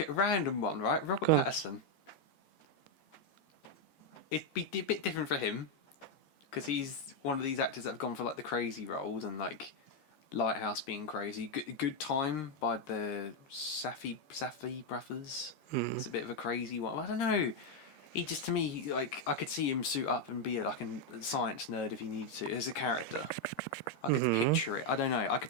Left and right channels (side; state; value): right; late; 13 ms